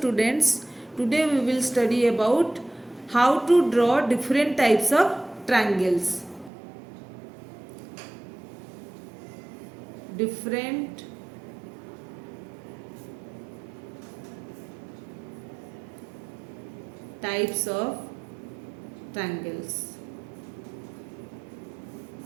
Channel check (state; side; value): drops out; left; at 6.5 s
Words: today we will study about how to draw different types of triangles. Different types of triangles.